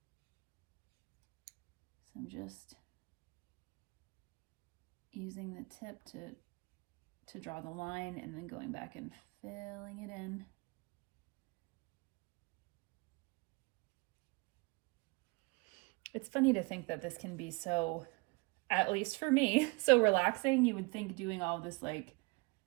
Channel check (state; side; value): quieter; left; 27.7 dB